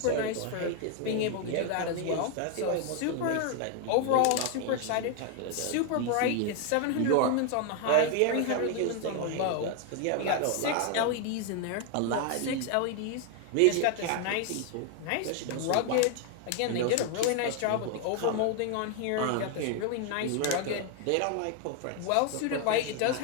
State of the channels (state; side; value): different; both; correlation 0.01